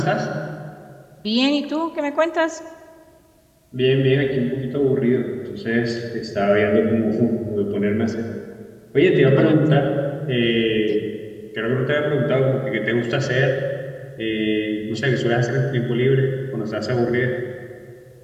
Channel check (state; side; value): identical; both; correlation 1.00